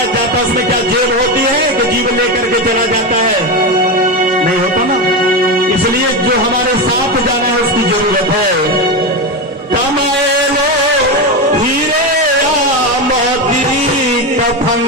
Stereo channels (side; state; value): both; normal; correlation 0.15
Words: जाता है उसमें क्या जेब होती है कि जीव लेकर के चला जाता है? नहीं होता ना। इसलिए जो हमारे साथ जाना है उसकी जरूरत है। कमाए लो हीरे या मोती कफन